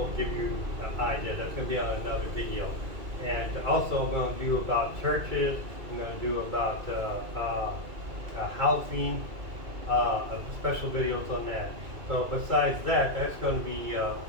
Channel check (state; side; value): late; left; 2.3 ms